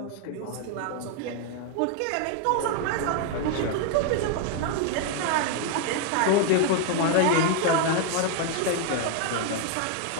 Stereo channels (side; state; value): both; different; correlation 0.00